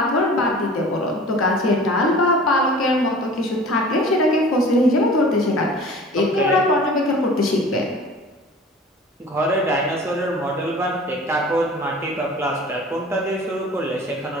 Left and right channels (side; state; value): both; normal; correlation 0.43